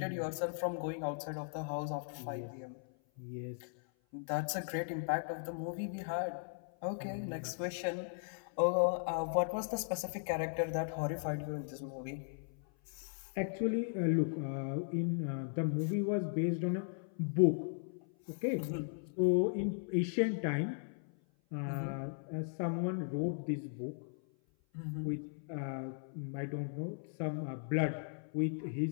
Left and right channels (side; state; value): right; silent; 53 dB below the other